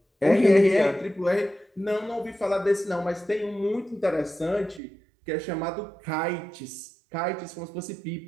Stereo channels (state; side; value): drops out; left; at 4.8 s